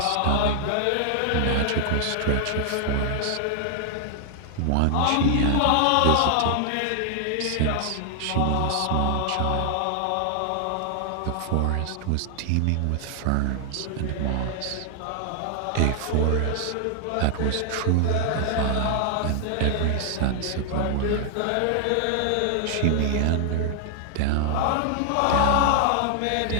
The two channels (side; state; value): both; different; correlation 0.00